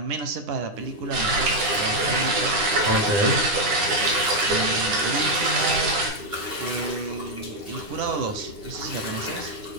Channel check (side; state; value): left; late; 9.9 ms